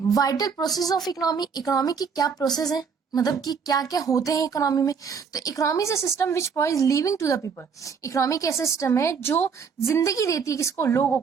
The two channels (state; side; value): quieter; left; 6.1 dB